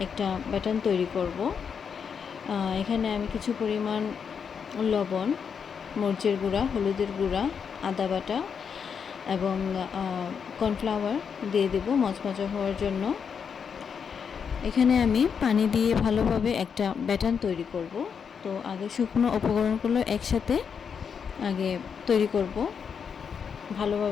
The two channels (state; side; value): quieter; right; 6.7 dB